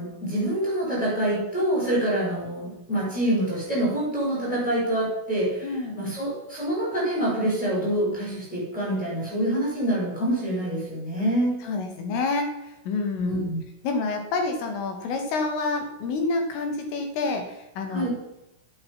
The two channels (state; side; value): late; right; 16 ms